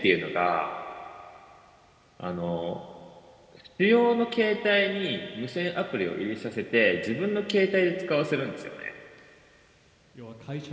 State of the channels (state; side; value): identical; both; correlation 1.00